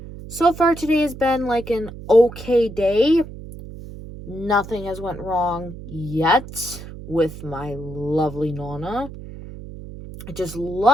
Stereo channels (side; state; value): right; noise; hum, 13 dB below the sound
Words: so far today has been like an okay day. Nothing has went wrong yet with my lovely nonna. I just